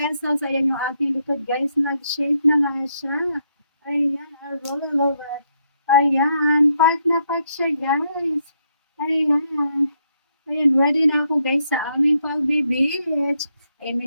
ayan yung ating likod guys, nag-shape na nga siya. Ayan, I really love it. Ayan, park na park siya guys. Ayan, ayan, ready na ako guys sa aming pag-beach. Ayan,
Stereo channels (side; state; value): both; inverted; correlation -0.76